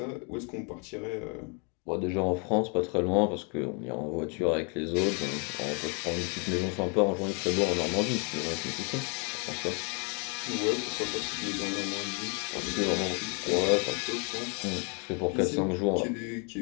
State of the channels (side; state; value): right; quieter; 36.0 dB